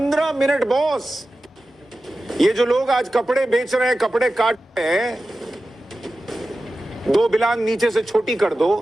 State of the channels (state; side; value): normal; both; correlation 0.94